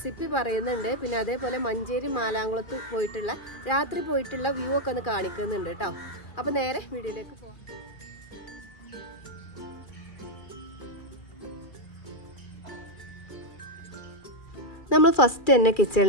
പറയുന്നുണ്ട്. പിന്നെ അതേപോലെ മഞ്ചേരി മാലാങ്കുളത്ത് പോയിട്ടുള്ള രാത്രി പോയിട്ടുള്ള വ്യൂ ഒക്കെ ഒന്ന് കാണിക്കുന്നുണ്ട് കേട്ടോ. അപ്പോൾ നേരെ വീഡിയോയിലേക്ക് പോകാം. നമ്മൾ ഫസ്റ്റ് തന്നെ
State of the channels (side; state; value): right; late; 2.4 ms